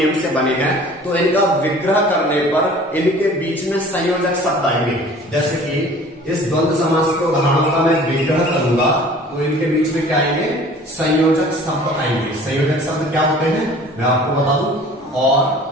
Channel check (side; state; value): both; normal; correlation 0.47